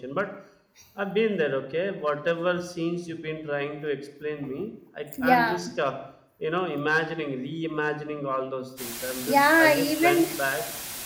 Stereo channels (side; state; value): both; identical; correlation 1.00